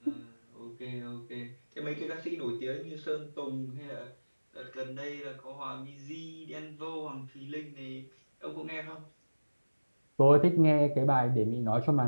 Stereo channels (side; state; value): both; inverted; correlation -1.00